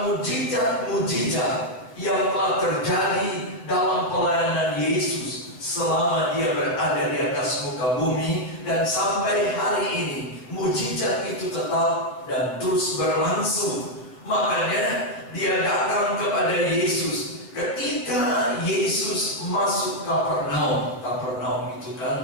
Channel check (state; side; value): late; right; 8.1 ms